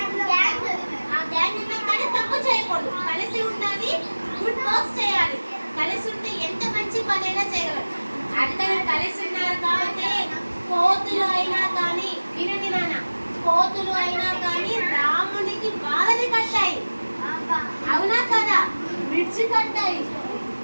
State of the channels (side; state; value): both; inverted; correlation -1.00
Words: ఆ గ్యాంగ్ ఉన్నా కానీ తప్పు చేయకూడదు. కలిసి ఉండాలి, గుడ్ వర్క్స్ చేయాలి. కలిసి ఉంటే ఎంత మంచి పనైనా చేయగలరు. అందరూ కలిసి ఉన్నారు కాబట్టి కోతులు అయినా కానీ, వినండి నాన్న, కోతులు అయినా కానీ రామునికి బాధని కట్టాయి. అవునా కదా? బ్రిడ్జ్ కట్టాయి.